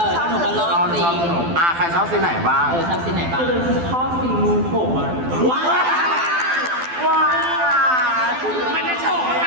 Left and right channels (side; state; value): left; late; 12 ms